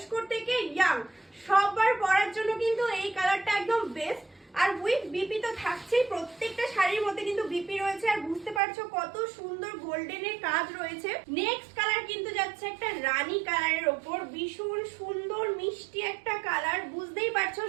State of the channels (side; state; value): left; drops out; at 8.6 s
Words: থেকে ইয়াং সবার পরার জন্য কিন্তু এই কালারটা একদম বেস্ট। আর উইথ বিপি তো থাকছেই, প্রত্যেকটা শাড়ির মধ্যে কিন্তু বিপি রয়েছে, আর বুঝতে পারছো কত সুন্দর গোল্ডেনের কাজ রয়েছে। নেক্সট কালার কিন্তু যাচ্ছে একটা রানী কালারের ওপর, ভীষণ সুন্দর মিষ্টি একটা কালার, বুঝতেই পারছো